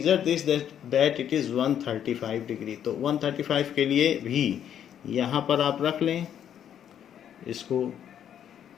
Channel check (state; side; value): quieter; right; 9.6 dB